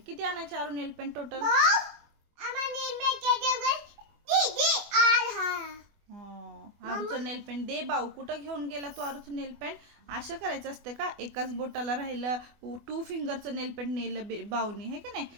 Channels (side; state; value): left; late; 24 ms